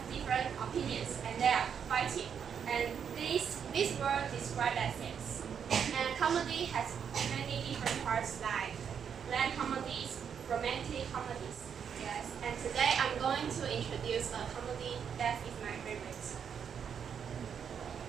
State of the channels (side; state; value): left; quieter; 7.5 dB